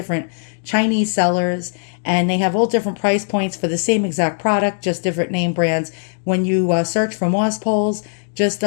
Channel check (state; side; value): silent; right; digital silence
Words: Chinese sellers, and they have all different price points for the same exact product, just different name brands. When you search for moss poles, just